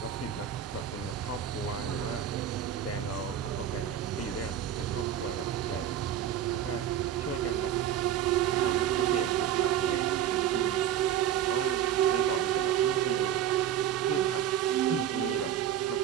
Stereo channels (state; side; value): quieter; left; 10.2 dB